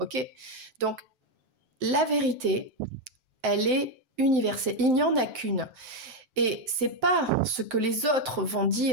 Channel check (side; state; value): left; late; 7.8 ms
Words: Donc, la vérité, elle est universelle. Il n'y en a qu'une. Et c'est pas ce que les autres vont